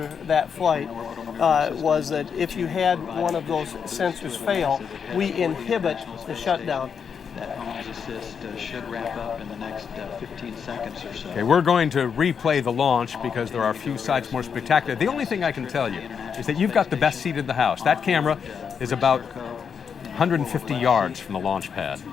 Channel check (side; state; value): right; quieter; 6.8 dB